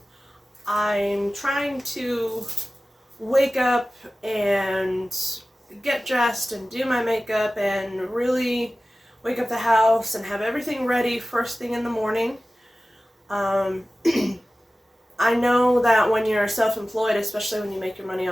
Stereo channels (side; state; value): both; normal; correlation 0.96